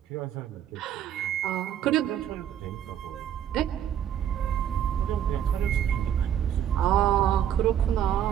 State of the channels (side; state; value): left; quieter; 9.9 dB